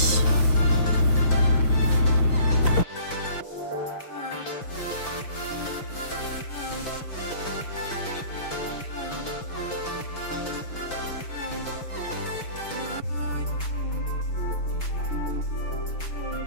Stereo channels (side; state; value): right; late; 6.1 ms